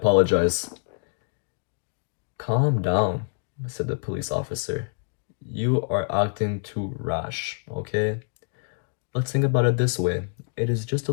"Calm down," said the police officer. "You are acting too rash, okay? Let's think about it this way. It is just a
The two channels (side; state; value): right; silent; digital silence